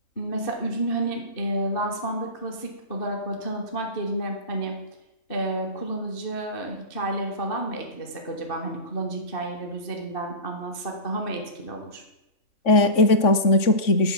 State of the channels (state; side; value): late; right; 3.6 ms